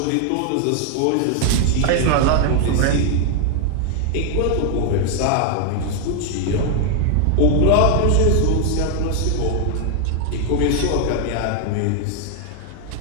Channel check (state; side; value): different; both; correlation 0.00